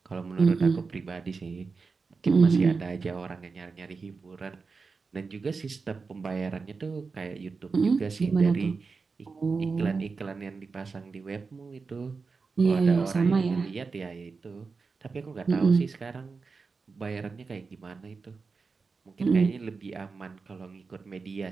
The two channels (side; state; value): left; quieter; 4.6 dB